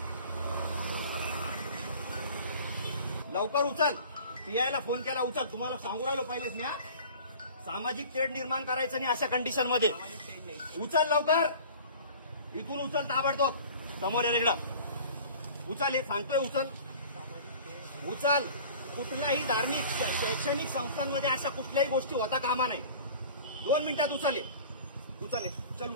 लवकर उचल. PI फोन केला, उचल. तुम्हाला सांगू राहिलो पहिलेच मी. सामाजिक तेढ निर्माण करायचं नाही अशा कंडिशन मध्ये. उचल लवकर, इथून उचल ताबडतोब. समोर या इकडं उचल. हे सांगतोय उचल. कुठल्याही धार्मिक शैक्षणिक संस्थांमध्ये अशा कुठल्याही गोष्टी होता कामा नाही. 2 मिनिटात उचल. चल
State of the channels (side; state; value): both; inverted; correlation -0.43